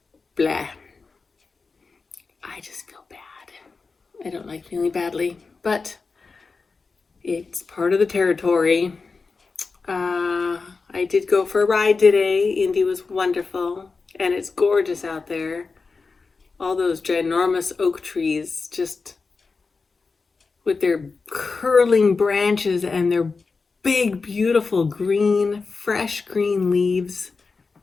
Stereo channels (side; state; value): right; quieter; 4.4 dB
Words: blah. I just feel bad. I don't like feeling badly, but it's part of the territory. I did go for a ride today. Indy was wonderful, and it's gorgeous out there. All those ginormous oak trees, just with their curling branches and their big, beautiful green, fresh green leaves.